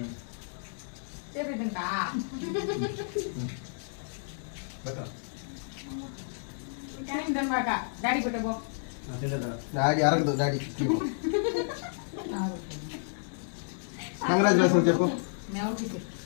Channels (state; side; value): silent; right; 57 dB below the other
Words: డాడీ అరగదు డాడీ కంగ్రాచులేషన్ చెప్పు